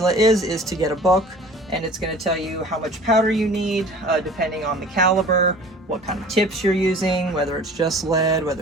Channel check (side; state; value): both; normal; correlation 0.45